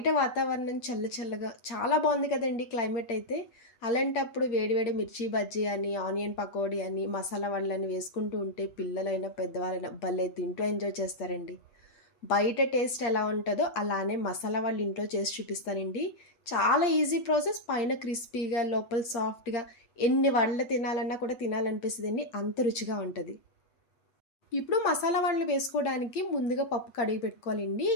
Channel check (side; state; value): right; late; 8.2 ms